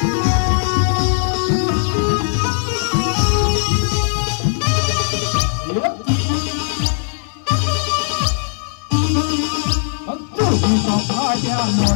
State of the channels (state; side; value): silent; right; 60 dB below the other